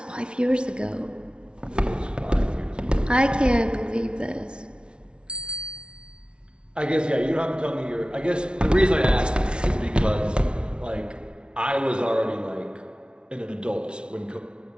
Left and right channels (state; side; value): late; left; 0.057 ms